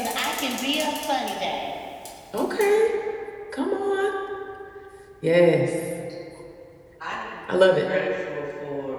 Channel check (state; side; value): identical; both; correlation 1.00